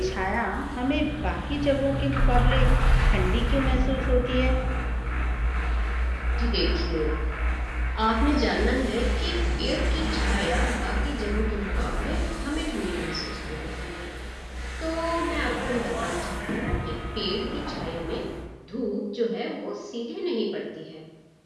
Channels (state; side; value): identical; both; correlation 1.00